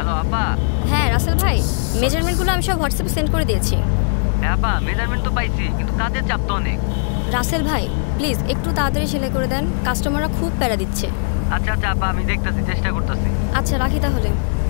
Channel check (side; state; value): right; silent; digital silence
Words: আপা। হ্যাঁ রাসেল ভাই, মেজারমেন্টগুলো আমি সব হোয়াটসঅ্যাপে সেন্ড করে দিয়েছি। হ্যাঁ আপা, মেজারমেন্ট তো পাইছি, কিন্তু কাজের চাপ তো অনেক। রাসেল ভাই প্লিজ একটু তাড়াতাড়ি সেলাই করে দেন, কাস্টমাররা খুব প্যারা দিচ্ছে। আচ্ছা আচ্ছা আপা, আমি দেখতেছি, চেষ্টা করতেছি। আচ্ছা রাখি তাহলে,